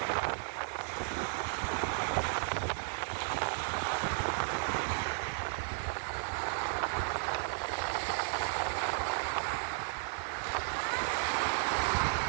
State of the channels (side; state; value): left; silent; 55 dB below the other